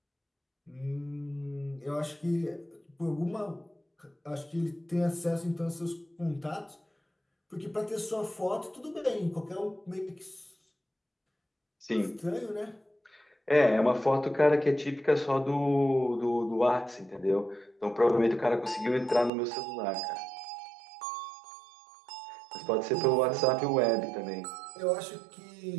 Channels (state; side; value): drops out; left; at 19.3 s